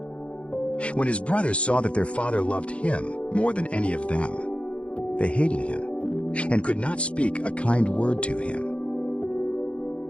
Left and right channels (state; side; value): late; right; 0.061 ms